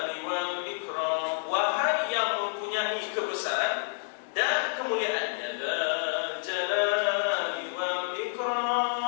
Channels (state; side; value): silent; right; 56 dB below the other